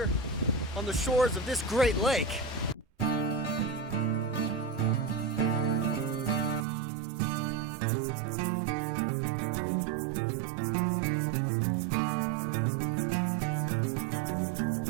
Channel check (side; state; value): left; drops out; at 6.7 s